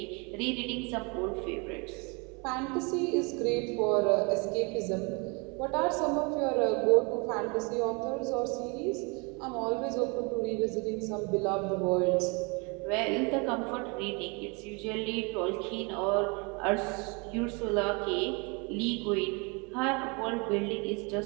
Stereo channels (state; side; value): quieter; left; 31.0 dB